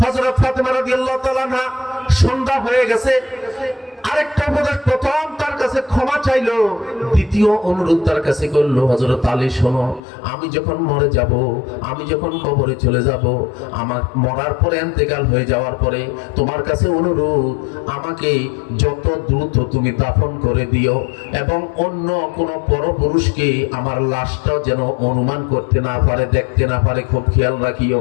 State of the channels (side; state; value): right; drops out; at 10.0 s